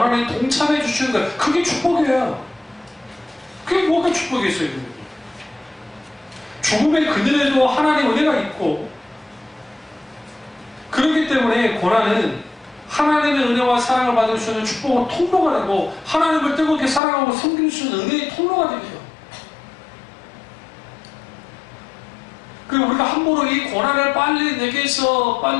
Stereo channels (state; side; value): drops out; right; at 17.0 s